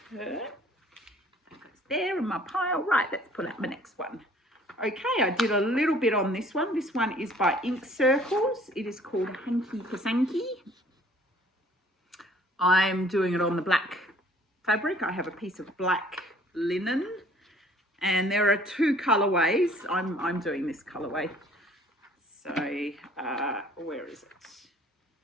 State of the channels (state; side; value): normal; both; correlation 0.56